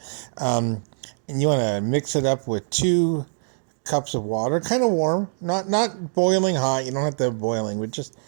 and you want to mix it up with 2 cups of water, kind of warm, not boiling hot. You don't have to have boiling, but just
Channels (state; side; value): silent; left; digital silence